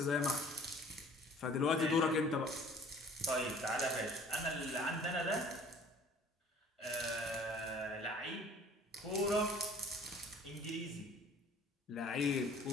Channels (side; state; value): both; normal; correlation 0.51